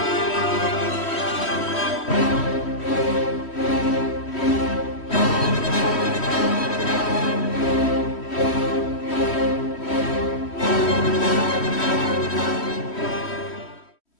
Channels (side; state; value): right; late; 3.1 ms